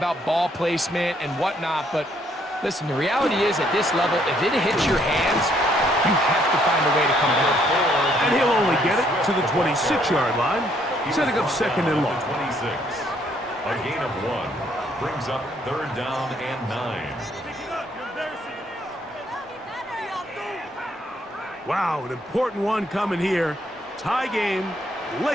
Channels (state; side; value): normal; both; correlation 0.68